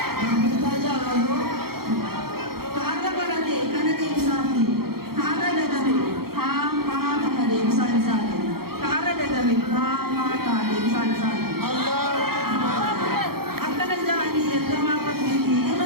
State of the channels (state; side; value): late; left; 0.94 ms